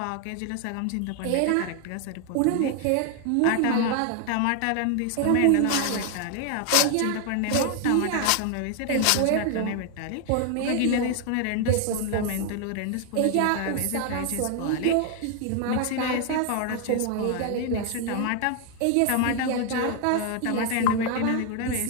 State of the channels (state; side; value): different; both; correlation 0.00